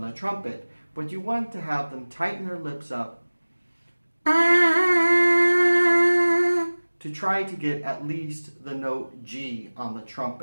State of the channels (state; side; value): inverted; both; correlation -1.00